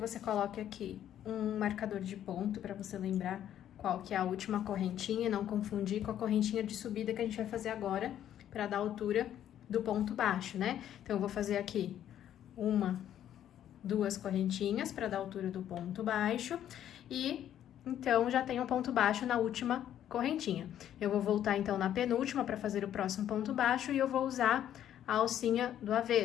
coloque aqui um marcador de ponto, pra você lembrar qual que é a última correntinha e não confundir com a correntinha de subida que a gente vai fazer agora, para dar a altura do ponto baixo, né? Então, eu vou fazer aqui 1, 2 correntinhas para dar a altura do ponto baixo e, então, já tenho um ponto baixo na última correntinha. Eu vou voltar, então, na penúltima para fazer o próximo ponto baixo e eu vou usar a alcinha do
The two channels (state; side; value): quieter; right; 10.8 dB